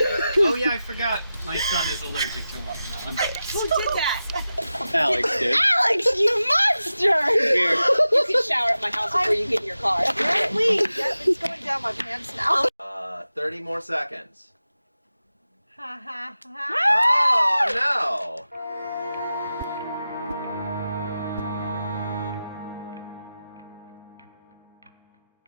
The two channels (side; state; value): both; inverted; correlation -0.93